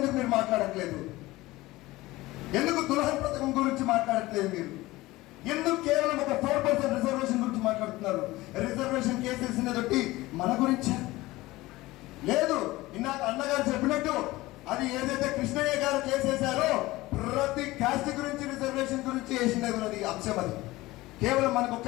మీరు మాట్లాడట్లేదు? ఎందుకు దుల్హన్ పథకం గురించి మాట్లాడట్లేదు మీరు? ఎందుకు కేవలం ఒక 4% రిజర్వేషన్ గురించి మాట్లాడుతున్నారు? రిజర్వేషన్ కేసెస్ తోటి మన గురించి లేదు. ఇందాక అన్నగారు చెప్పినట్టు అది ఏదైతే కృష్ణయ్య గారు కేసేశారో ప్రతి కాస్ట్ గురించి రిజర్వేషన్ గురించి వేసినది అంశం. అది కేవలం మనకు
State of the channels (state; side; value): quieter; right; 19.0 dB